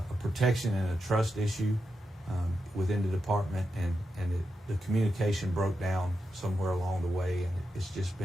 protection and a trust issue within the department, and the communication broke down somewhere along the way, and it's just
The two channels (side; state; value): both; normal; correlation 0.87